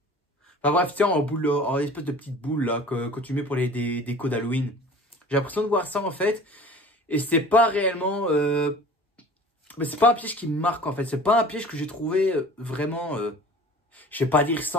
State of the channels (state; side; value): normal; both; correlation 0.44